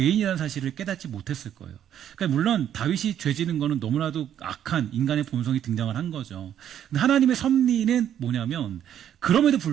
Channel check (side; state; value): left; quieter; 10.1 dB